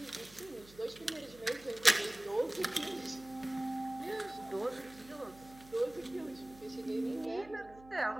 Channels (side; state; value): right; noise; hum, 22 dB below the sound